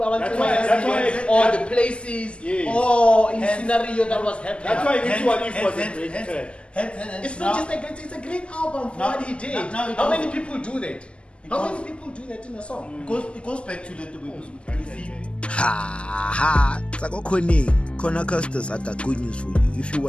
why- or the places Yes. or in scenario that was happening. That's why this one if was a great track. It's not just a great, it's a great album for what he did. How many people do that? How many people do that in a song? It goes back to the Ha! Kona Custos, I got good news for you. If you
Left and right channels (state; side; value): late; right; 0.053 ms